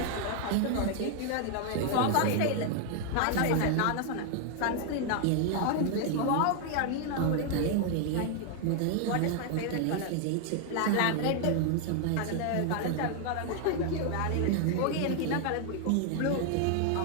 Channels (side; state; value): both; different; correlation 0.00